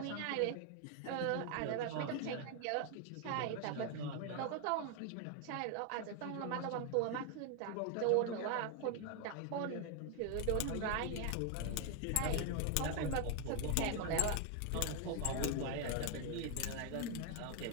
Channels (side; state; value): both; different; correlation 0.01